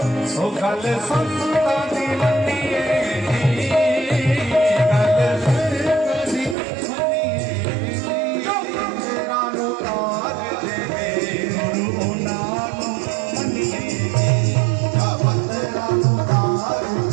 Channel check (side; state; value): left; drops out; at 6.6 s